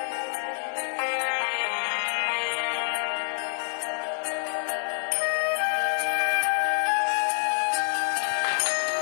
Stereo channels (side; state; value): right; silent; 60 dB below the other